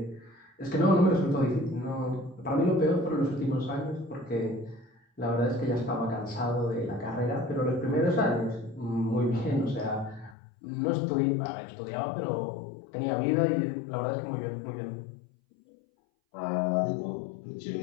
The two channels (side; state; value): right; drops out; at 10.4 s